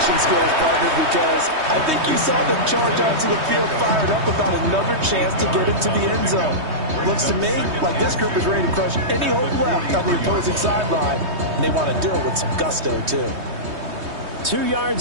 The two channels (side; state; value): left; late; 3.2 ms